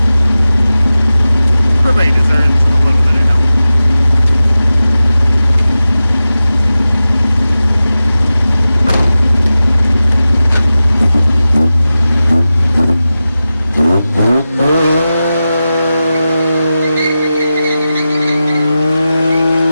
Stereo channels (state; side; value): inverted; both; correlation -0.94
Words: Everybody deserves a little bit of help.